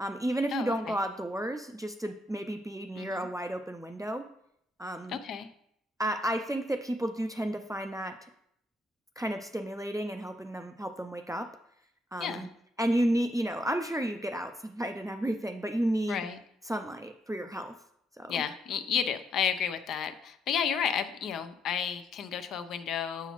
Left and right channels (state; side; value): normal; both; correlation 0.75